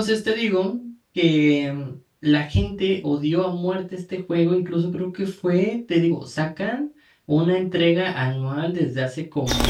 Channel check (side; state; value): both; identical; correlation 1.00